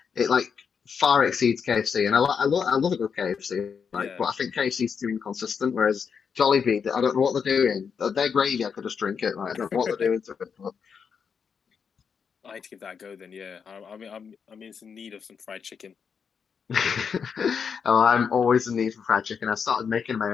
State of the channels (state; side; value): quieter; right; 6.5 dB